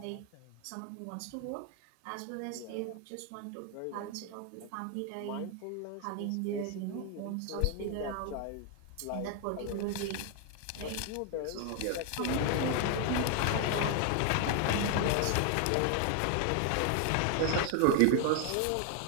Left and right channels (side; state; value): both; different; correlation 0.00